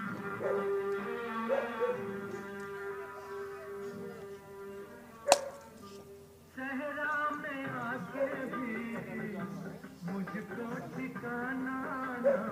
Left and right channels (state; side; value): identical; both; correlation 1.00